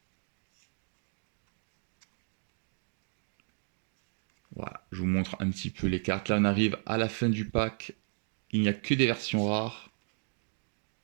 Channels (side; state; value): left; silent; 55 dB below the other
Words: Voilà, je vous montre un petit peu les cartes. Là, on arrive à la fin du pack. Il n'y a que des versions rares.